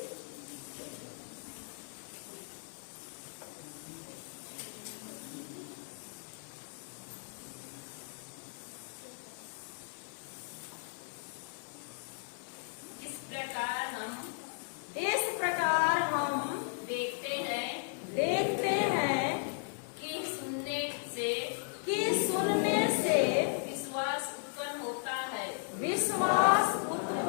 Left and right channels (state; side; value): silent; right; digital silence